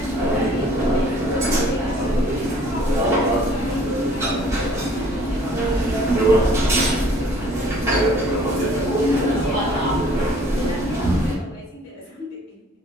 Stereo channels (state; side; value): normal; both; correlation 0.55